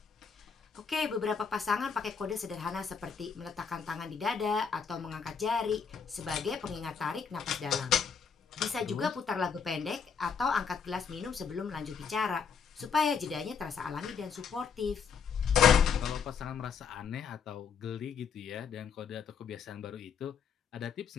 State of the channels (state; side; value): quieter; right; 6.4 dB